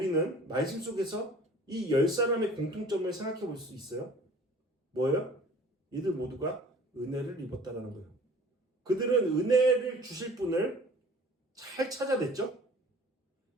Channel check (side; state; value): both; normal; correlation 0.48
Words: 말씀 속에서 이 10사람의 공통점을 생각해 볼 수 있어요. 뭐예요? 이들 모두가 은혜를 입었다라는 거예요. 그들은 은혜를 주실 분을 잘 찾아냈죠.